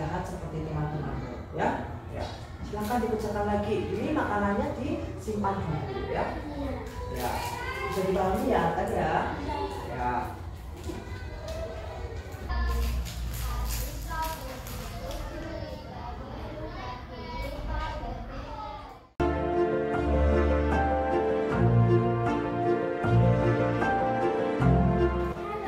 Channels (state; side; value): identical; both; correlation 1.00